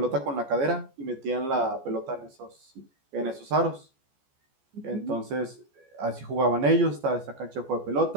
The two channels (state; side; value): late; left; 14 ms